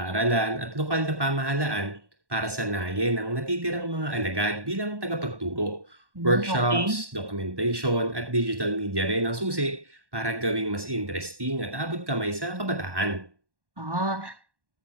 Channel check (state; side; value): late; left; 1.1 ms